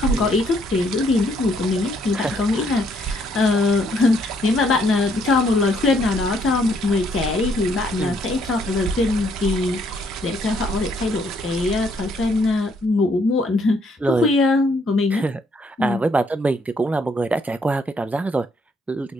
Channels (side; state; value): both; normal; correlation 0.69